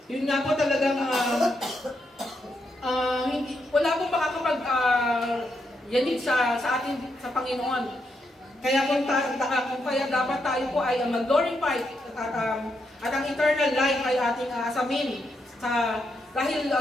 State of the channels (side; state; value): both; normal; correlation 0.81